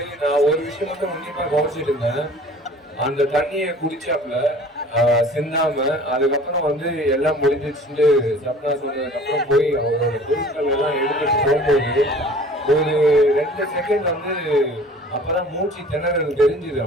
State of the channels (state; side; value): normal; both; correlation 0.47